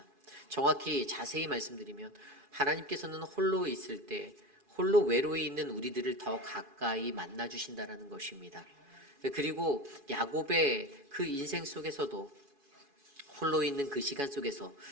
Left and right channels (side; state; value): left; late; 2.4 ms